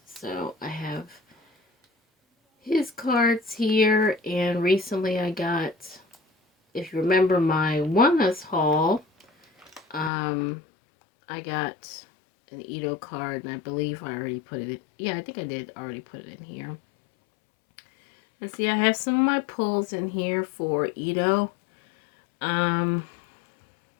So I have his cards here, and recently I got, if you remember my Oneus haul, I got an Ito card, and I believe I already put it in. Yeah, I think I did already put it in here. Let's see, I have some of my pulls in here for Ito. There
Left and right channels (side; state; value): right; drops out; at 10.1 s